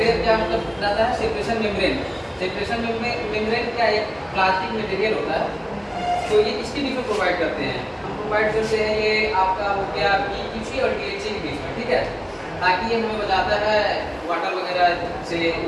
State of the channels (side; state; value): both; identical; correlation 1.00